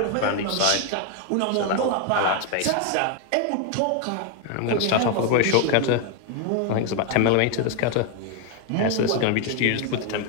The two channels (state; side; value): different; both; correlation 0.01